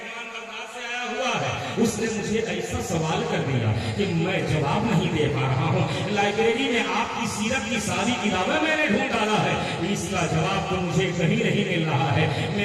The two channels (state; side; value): identical; both; correlation 1.00